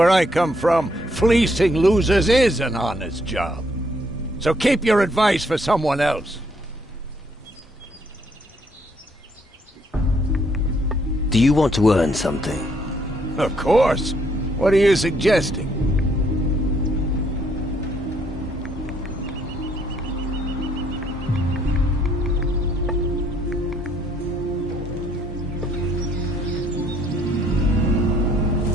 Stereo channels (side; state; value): both; normal; correlation 0.68